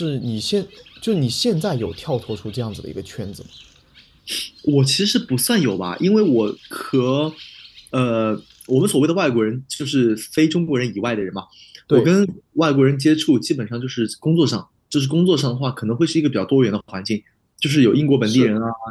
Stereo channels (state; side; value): identical; both; correlation 1.00